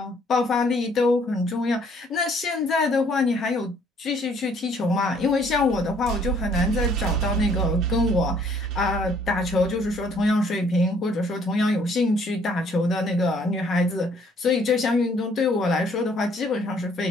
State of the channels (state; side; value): normal; both; correlation 0.63